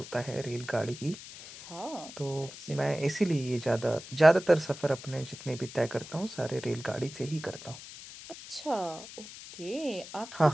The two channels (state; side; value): noise; left; hiss, 14 dB below the sound